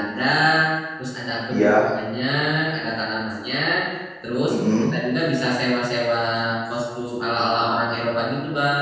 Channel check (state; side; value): identical; both; correlation 1.00